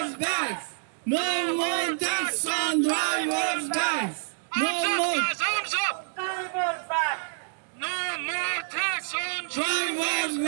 back. No more tax on drivers back. No more Arms up! Drivers back! No more tax on drivers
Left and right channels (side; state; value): left; silent; digital silence